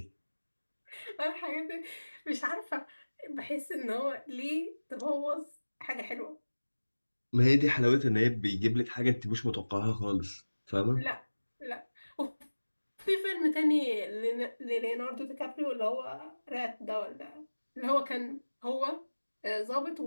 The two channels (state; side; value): inverted; both; correlation -1.00